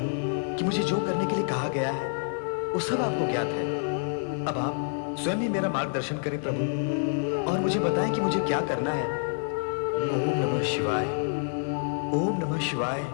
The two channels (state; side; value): silent; right; digital silence